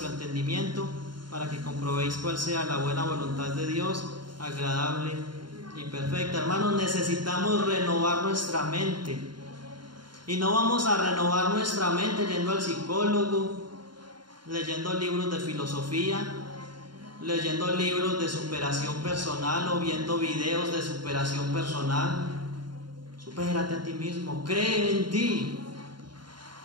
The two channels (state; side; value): late; left; 0.72 ms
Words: entendimiento, para que comprobéis cuál sea la buena voluntad de Dios, agradable y perfecta. Hermanos, necesitamos renovar nuestra mente. Y no vamos a renovar nuestra mente yendo al psicólogo, leyendo libros de filosofía, leyendo libros de superación personal o viendo videos de superación personal. Supérate a ti mismo, cree en ti.